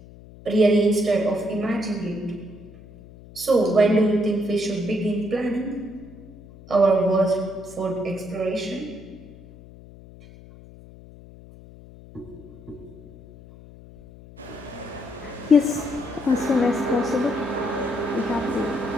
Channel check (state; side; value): noise; left; hum, 20 dB below the sound